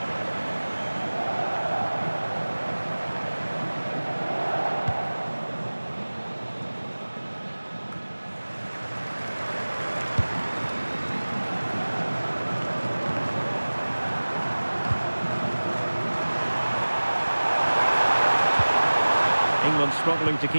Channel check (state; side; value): inverted; both; correlation -1.00